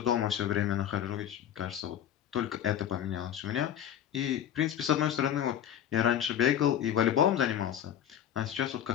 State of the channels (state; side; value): quieter; right; 10.1 dB